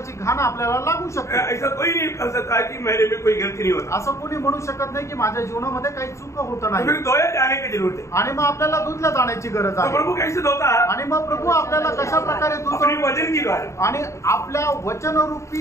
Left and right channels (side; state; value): right; late; 0.14 ms